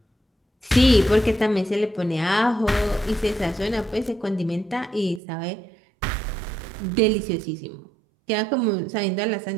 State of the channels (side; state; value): left; drops out; at 5.2 s